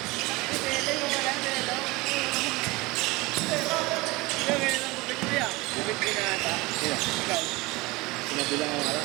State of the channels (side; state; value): left; quieter; 22.8 dB